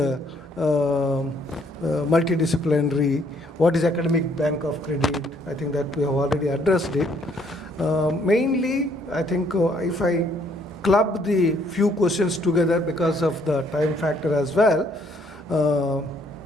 multidisciplinary, what is academic bank of credit? I think that we have already addressed it. Mainly, I think if I club the few questions together because of the time factor as well,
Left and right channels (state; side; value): normal; both; correlation 0.66